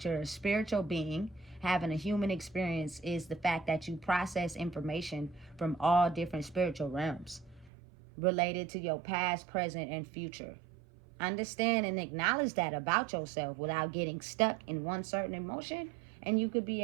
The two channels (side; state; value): left; drops out; at 7.7 s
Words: you're a spiritual being having a human experience is the fact that you process information from all different spiritual realms related to your past, present, and future. Understand and acknowledge that about yourself without getting stuck in one certain emotion, and you could be